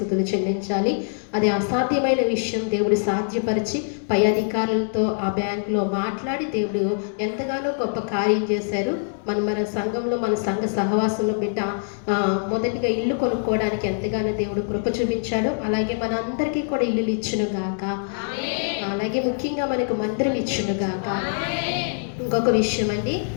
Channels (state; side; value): silent; right; digital silence